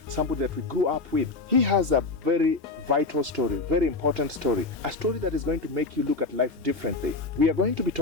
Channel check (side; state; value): right; quieter; 3.6 dB